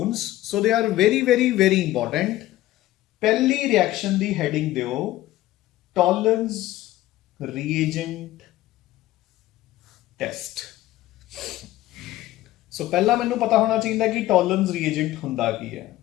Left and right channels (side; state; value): right; quieter; 15.7 dB